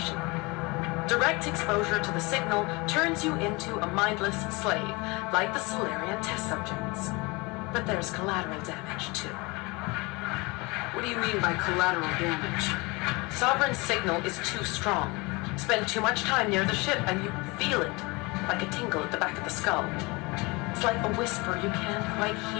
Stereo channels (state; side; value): quieter; right; 25.7 dB